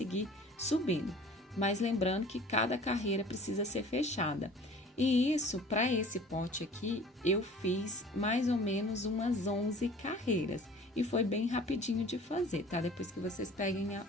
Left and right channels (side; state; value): both; normal; correlation 0.46